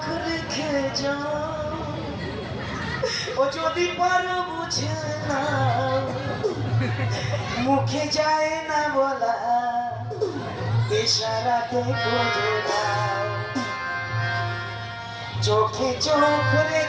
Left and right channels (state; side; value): identical; both; correlation 1.00